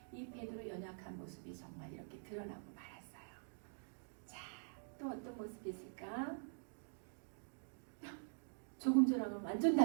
이 베드로 연약한 모습이 정말 이렇게 드러나고 말았어요. 자, 또 어떤 모습이 있을까? 조금 전하고는 완전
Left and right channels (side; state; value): left; silent; digital silence